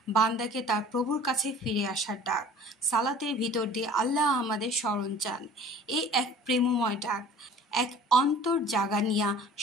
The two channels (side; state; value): both; normal; correlation 0.47